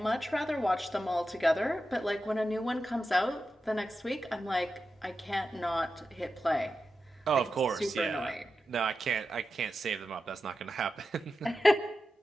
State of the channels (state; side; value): normal; both; correlation 0.91